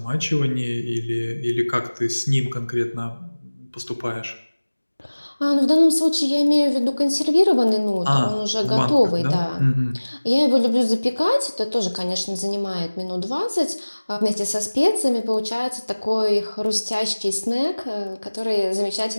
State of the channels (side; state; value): both; inverted; correlation -1.00